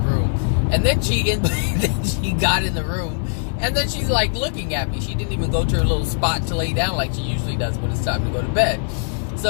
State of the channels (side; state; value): right; silent; 65 dB below the other